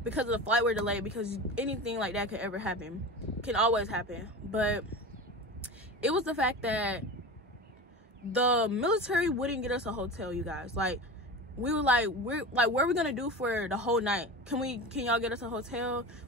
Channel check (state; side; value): normal; both; correlation 0.30